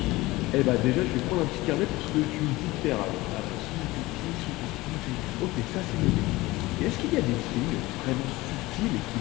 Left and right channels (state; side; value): quieter; right; 19.9 dB